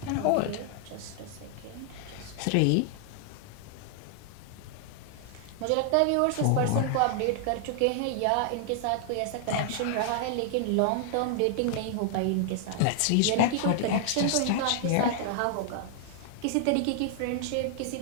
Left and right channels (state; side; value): different; both; correlation 0.00